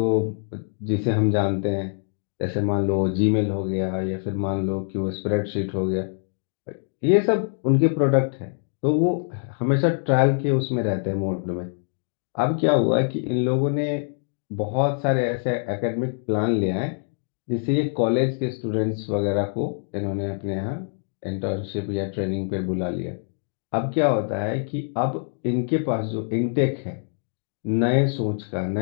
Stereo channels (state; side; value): silent; right; 62 dB below the other